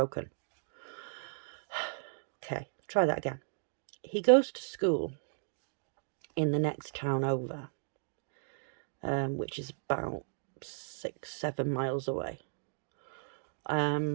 Okay, try that again. He goes to school in the next town over, which is about 6-7 miles away. I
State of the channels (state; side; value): silent; left; digital silence